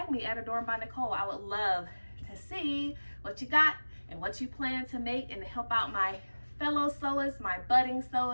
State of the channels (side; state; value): both; inverted; correlation -1.00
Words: me at Adorned by Nicole. I would love to see what you got and what you plan to make, and to help out my fellow sewers, my budding